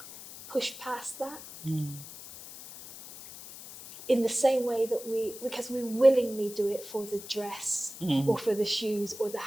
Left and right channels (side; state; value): left; noise; hiss, 14 dB below the sound